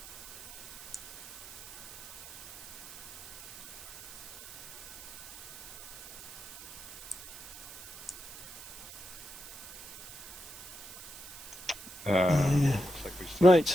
Looks like we see.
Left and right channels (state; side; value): noise; right; hiss, 14 dB below the sound